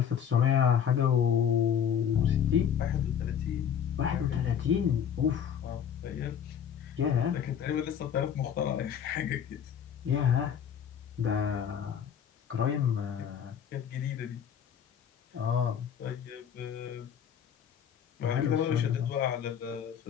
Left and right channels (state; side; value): quieter; right; 8.4 dB